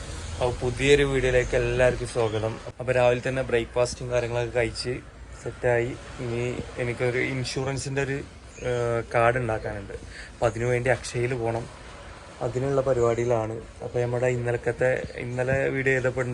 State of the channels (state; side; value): identical; both; correlation 1.00